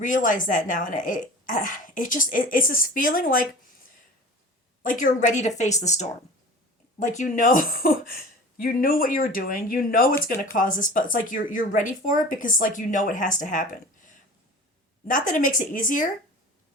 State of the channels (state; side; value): normal; both; correlation 0.39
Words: that now, and it's this feeling like you're ready to face the storm. Like, you know, you knew what you were doing, you know it's going to cause this, but it's like you're ready for it because, like, you know it has to happen. Not that it makes it easier,